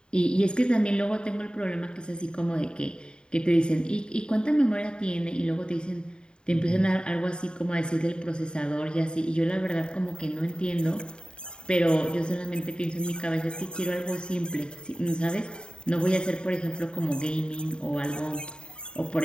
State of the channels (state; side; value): late; right; 0.050 ms